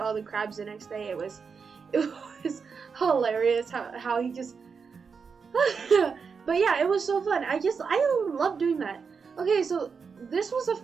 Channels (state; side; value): quieter; left; 5.6 dB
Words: all the crabs the next day. It was hilarious how he just. But yeah, it was so fun. I love doing that. Okay, so this was a